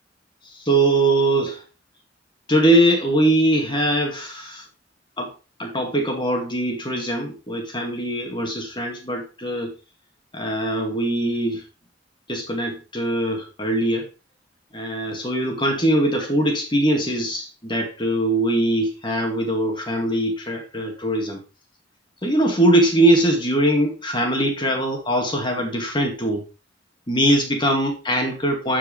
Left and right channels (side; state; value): both; normal; correlation 0.40